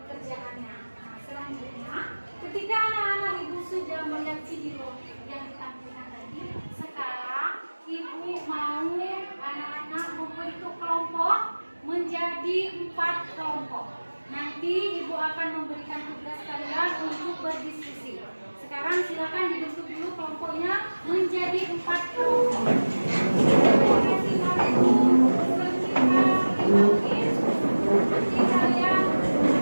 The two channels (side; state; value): both; inverted; correlation -1.00